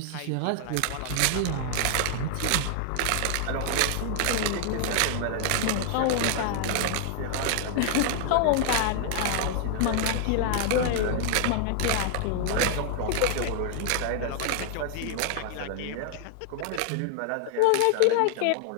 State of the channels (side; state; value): both; different; correlation 0.00